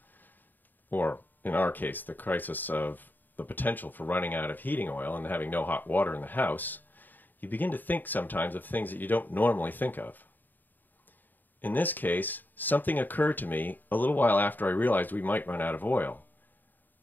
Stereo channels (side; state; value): right; late; 0.089 ms